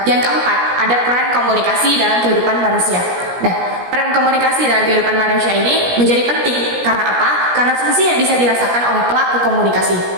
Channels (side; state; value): left; late; 17 ms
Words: yang keempat ada peran komunikasi dalam kehidupan manusia. Nah, peran komunikasi dalam kehidupan manusia ini menjadi penting. Karena apa? Karena fungsi yang bisa dirasakan oleh pelaku komunikasi.